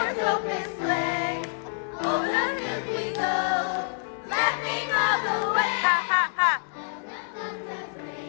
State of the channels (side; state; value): right; silent; 60 dB below the other